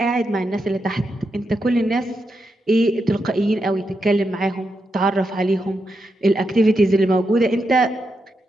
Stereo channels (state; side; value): normal; both; correlation 0.85